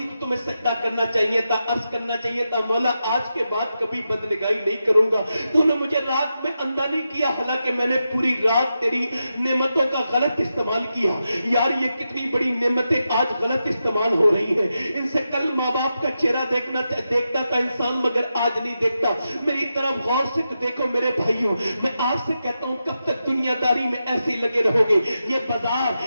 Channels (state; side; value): inverted; both; correlation -0.88